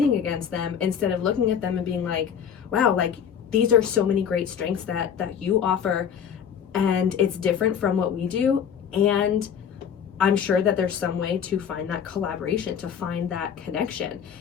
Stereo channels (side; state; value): right; quieter; 8.0 dB